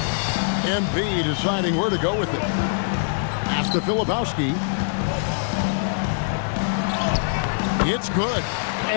MP deciding where to go with it. Pass to Filipowski. It's good.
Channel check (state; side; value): silent; right; digital silence